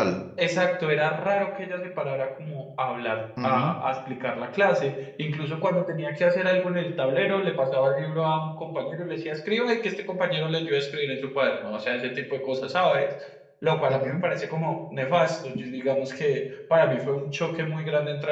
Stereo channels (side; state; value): both; identical; correlation 1.00